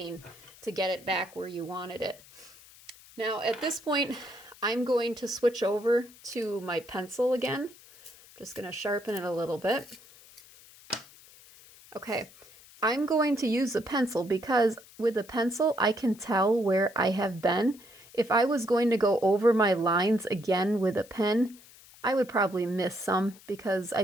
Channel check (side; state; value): left; noise; hiss, 23 dB below the sound